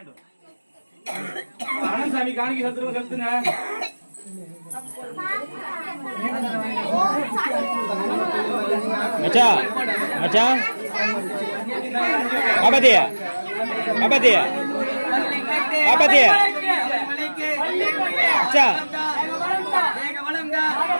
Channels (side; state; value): both; inverted; correlation -1.00